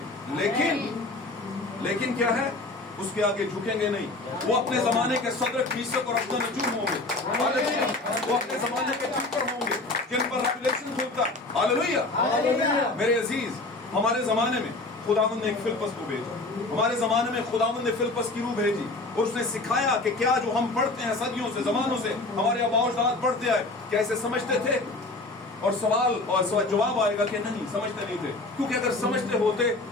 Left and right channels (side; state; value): right; quieter; 3.0 dB